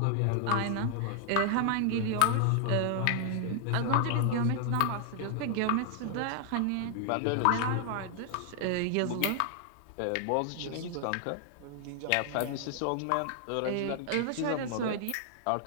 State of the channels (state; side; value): different; both; correlation 0.00